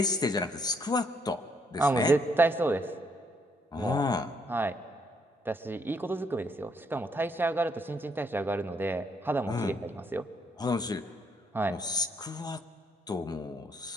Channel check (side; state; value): both; normal; correlation 0.71